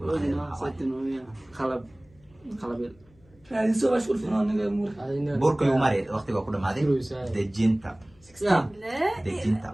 Setting ويا خلب خلب. هذه سوى شغل فنان مور burka igu mari waqtiga ku dhamaaday. dejinta. يا. لا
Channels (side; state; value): left; noise; hum, 29 dB below the sound